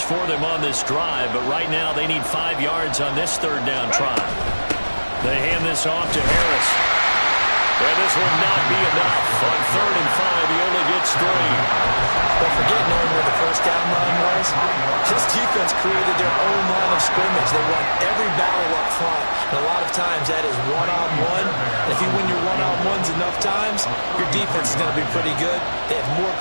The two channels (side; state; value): both; inverted; correlation -1.00